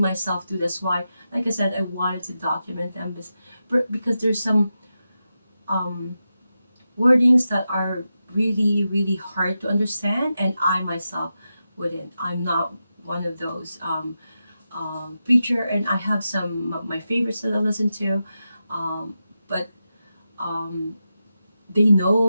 too. That's why, like I said, I wanted to document them because there's some um, wordings that are really really hard to understand, and I myself wouldn't. I'm not one of those preacher, and I have some of my favorites that I listen to, but um, they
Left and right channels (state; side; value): inverted; both; correlation -0.90